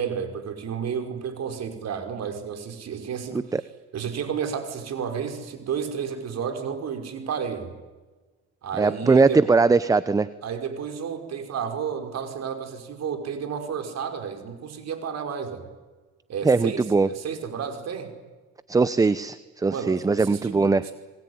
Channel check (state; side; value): quieter; left; 4.2 dB